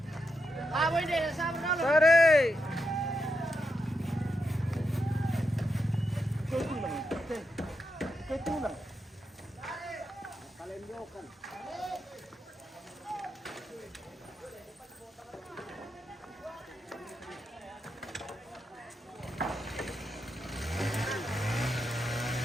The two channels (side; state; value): both; normal; correlation 0.85